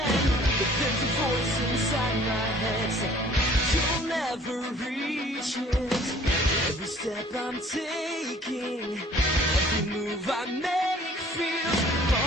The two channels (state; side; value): normal; both; correlation 0.54